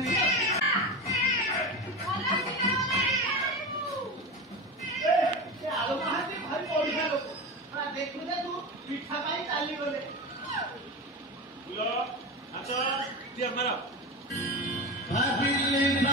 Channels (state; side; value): normal; both; correlation 0.24